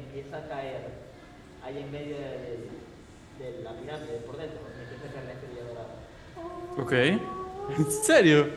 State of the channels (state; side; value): identical; both; correlation 1.00